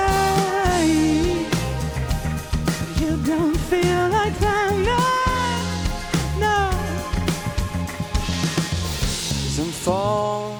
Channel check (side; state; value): both; identical; correlation 1.00